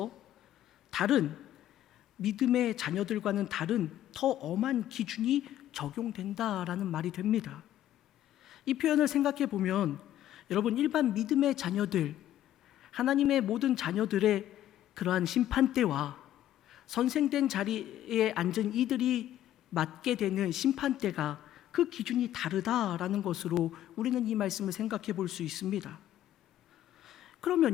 다른 믿음의 자녀들과는 다른 더 엄한 기준이 적용된다라는 말이 됩니다. 이 표현을 생각해 보면 여러분, 일반 믿음의 자녀들, 하나님의 모든 자녀들의 그러한 심판대와 선생된 자리에 앉은 이들이 맡게 되는 심판대가 그 기준이 다르다라는 것으로 우리는 이 말씀을 생각해 볼 수 있습니다.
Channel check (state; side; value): quieter; right; 12.3 dB